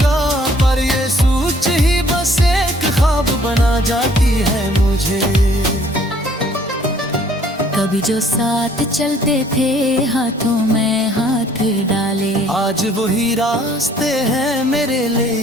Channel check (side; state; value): both; normal; correlation 0.59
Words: पर ये सोच ही बस एक ख्वाब बना जाती है मुझे। कभी जो साथ चलते थे हाथों में हाथ डाले, आज वही रास्ते हैं मेरे